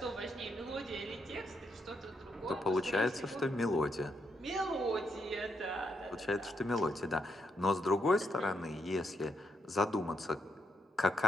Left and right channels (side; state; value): both; normal; correlation 0.79